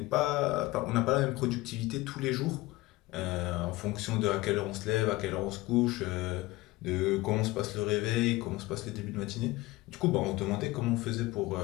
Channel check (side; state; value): right; quieter; 19.7 dB